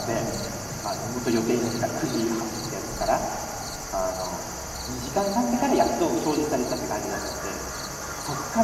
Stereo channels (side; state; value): both; identical; correlation 1.00